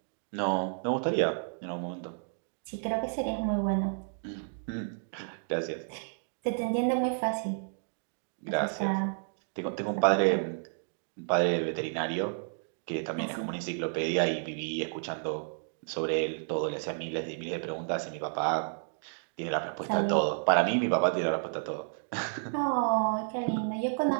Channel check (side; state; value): left; silent; digital silence